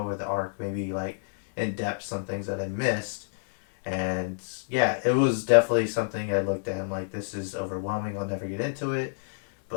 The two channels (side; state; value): right; silent; 59 dB below the other